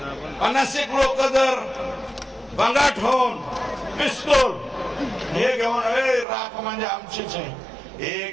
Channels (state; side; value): drops out; left; at 6.2 s